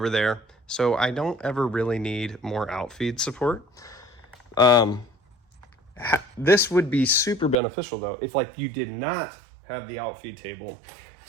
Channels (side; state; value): left; drops out; at 7.6 s